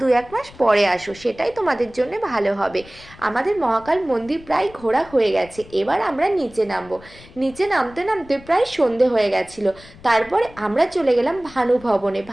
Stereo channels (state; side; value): noise; left; rumble, 21 dB below the sound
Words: মাস পরে আসো, সেটাই তোমাদের জন্য ভালো হবে। আমাদের মহাকাল মন্দির প্রায় ঘোরা হয়ে গেছে, এবার আমরা নিচে নামবো। নিচে নামতে নামতে প্রায় সন্ধে হয়ে গেছিল। তারপরে আমরা চলে গেলাম ভানু ভবনে।